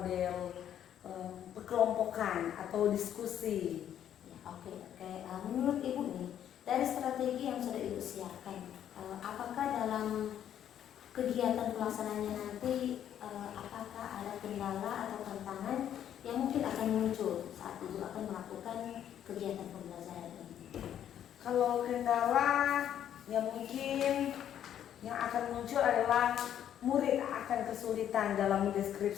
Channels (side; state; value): right; quieter; 10.2 dB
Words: perkelompokan atau diskusi. Ya, oke. Menurut Ibu nih, dari strategi yang sudah Ibu siapkan, apakah dalam kegiatan pelaksanaannya nanti apakah ada kendala atau tantangan yang mungkin akan muncul saat Ibu akan melakukan kegiatan pembelajaran ini? Kalau kendala yang mungkin yang akan muncul adalah murid akan kesulitan dalam